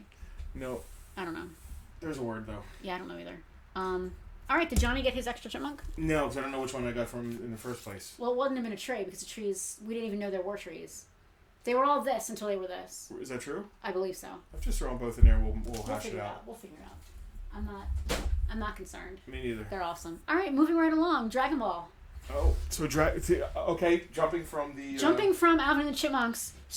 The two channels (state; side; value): identical; both; correlation 1.00